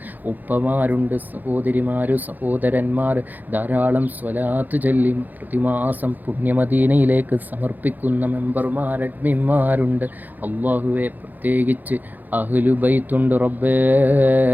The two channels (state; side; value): late; left; 0.084 ms